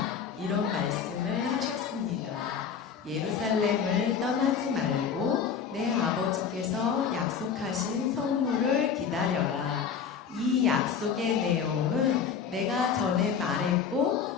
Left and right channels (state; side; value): quieter; right; 6.8 dB